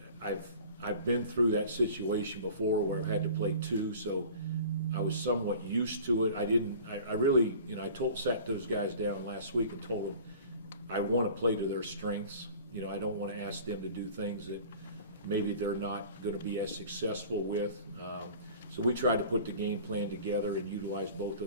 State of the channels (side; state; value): both; inverted; correlation -0.43